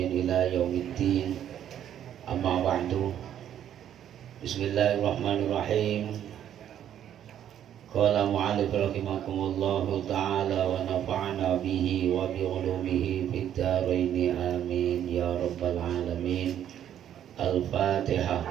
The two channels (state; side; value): quieter; left; 10.3 dB